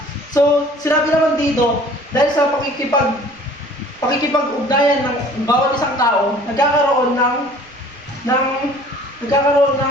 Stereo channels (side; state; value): right; noise; rumble, 29 dB below the sound